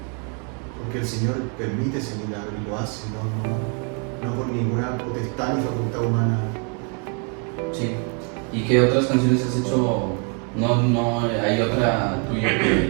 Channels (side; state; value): left; quieter; 38.7 dB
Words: el Señor permite ese milagro y lo hace, no por ninguna potestad ni facultad humana. Sí. ¿Y qué otras canciones has hecho? No hay otra tuya